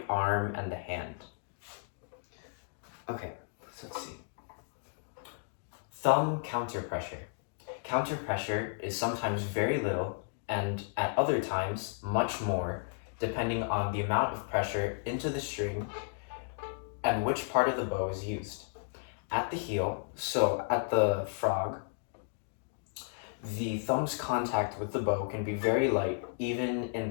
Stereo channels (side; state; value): right; silent; digital silence